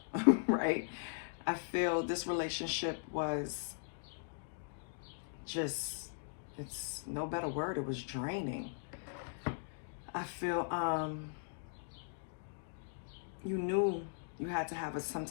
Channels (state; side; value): silent; right; digital silence